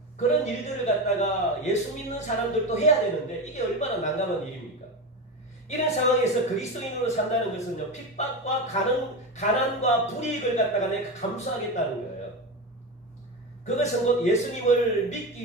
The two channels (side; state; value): both; normal; correlation 0.20